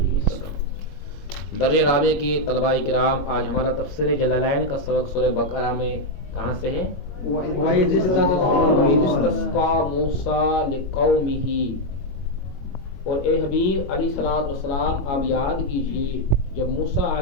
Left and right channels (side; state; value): right; late; 21 ms